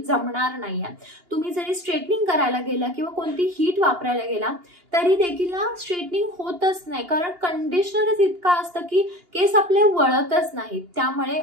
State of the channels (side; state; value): left; late; 2.8 ms